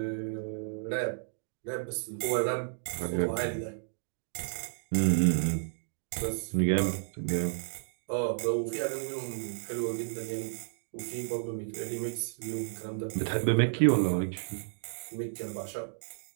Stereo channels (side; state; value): left; silent; digital silence